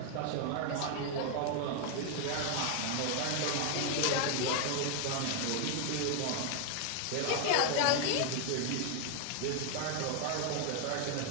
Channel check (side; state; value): both; different; correlation 0.00